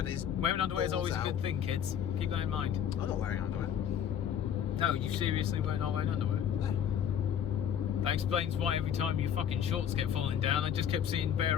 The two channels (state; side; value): quieter; right; 8.9 dB